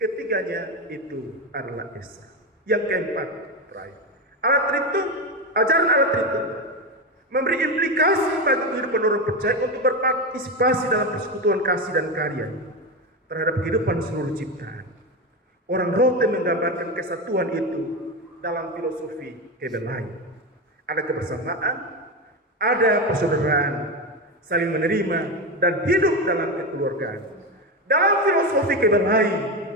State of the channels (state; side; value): normal; both; correlation 0.16